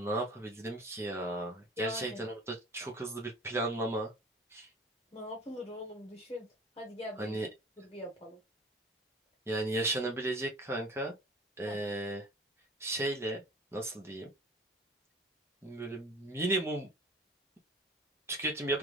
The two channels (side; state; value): both; normal; correlation 0.44